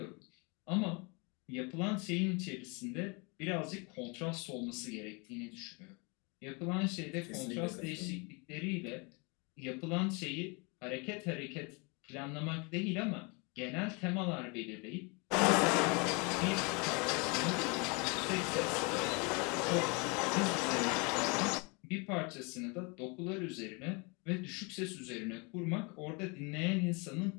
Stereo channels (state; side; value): quieter; right; 30.6 dB